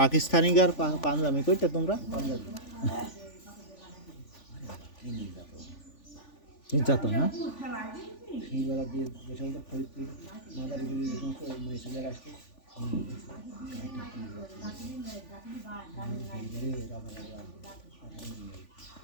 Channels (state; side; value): late; right; 3.5 ms